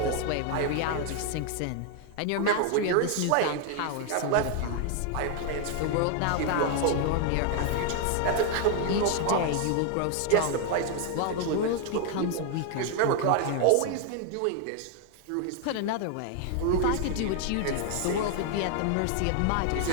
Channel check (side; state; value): both; different; correlation 0.01